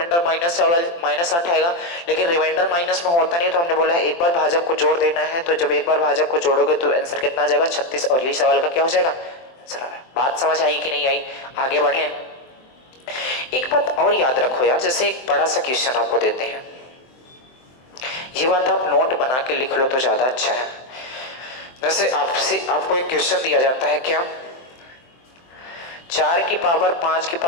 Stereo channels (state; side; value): late; right; 23 ms